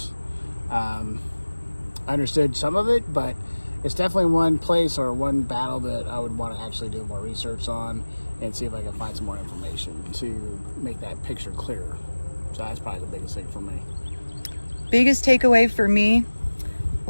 I understood some of it, but it's definitely one place or one battle that I would want to actually do more research on and see if I can find some more information to make that picture clearer. So that's probably the biggest thing for me. Biggest takeaway for me,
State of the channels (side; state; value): both; inverted; correlation -1.00